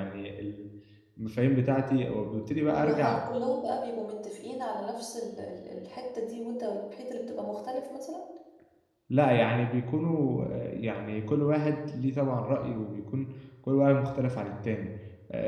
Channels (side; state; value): both; identical; correlation 1.00